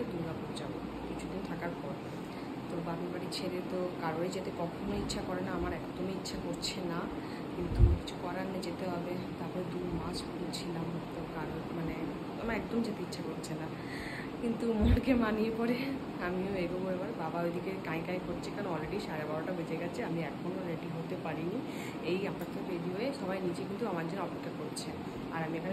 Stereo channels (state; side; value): identical; both; correlation 1.00